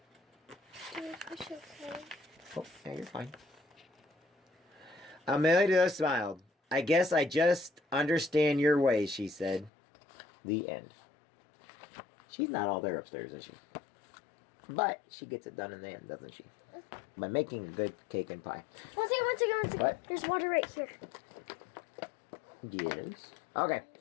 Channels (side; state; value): right; drops out; at 9.7 s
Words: Oh, yeah, you're fine. Amelia smiled. "I guess I just understand your ways," she said. The end. She's not all there upstairs, is she? But she gets it done in the end, doesn't she? By making a good cake and pie. One second. What? There's water right here. Yes. Okay.